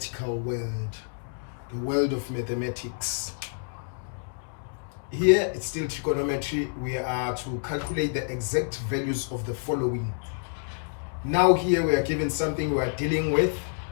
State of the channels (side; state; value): right; silent; 59 dB below the other